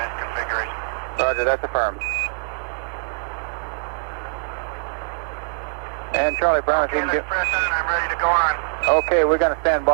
configuration. Roger, that's affirmed. And Charlie Brown, if you can get... press on, I'm ready to go on. Okay, we're going to stand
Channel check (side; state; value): left; silent; digital silence